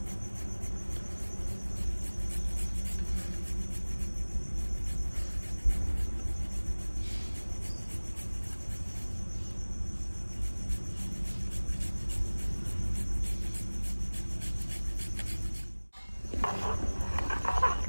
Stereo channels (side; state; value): both; inverted; correlation -1.00